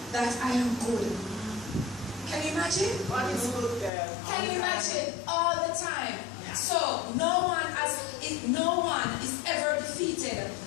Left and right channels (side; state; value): right; drops out; at 3.9 s